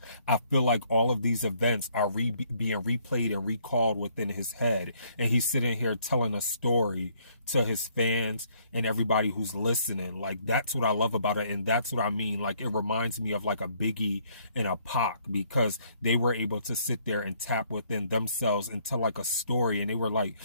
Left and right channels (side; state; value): both; inverted; correlation -0.66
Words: I feel like all of these events are being replayed and recalled within his head, and he's sitting here telling a story to his fans and everybody who's listening. Like that's what I love about it, and that's what I mean. Like it reminds me of like a Biggie and a Pac, because they were able to sit there and tap within themselves and tell like a story, and they were like,